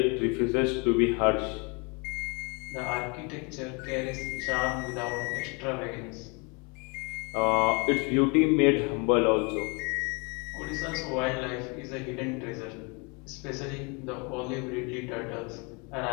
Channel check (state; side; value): quieter; right; 31.9 dB